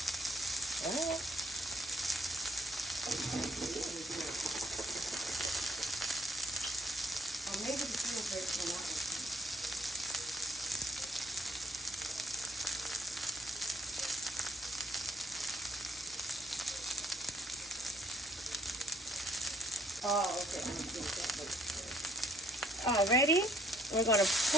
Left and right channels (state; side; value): normal; both; correlation 0.65